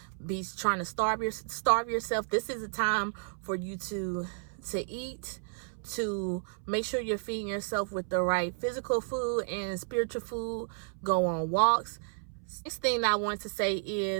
be trying to starve yourself. This is a time for you to eat, to make sure you're feeding yourself with the right physical food and spiritual food. Go on walks. Next thing I want to say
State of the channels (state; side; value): silent; left; 56 dB below the other